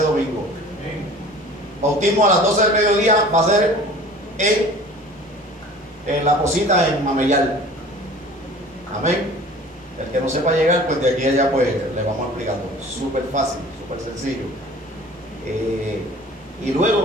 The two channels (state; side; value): normal; both; correlation 0.44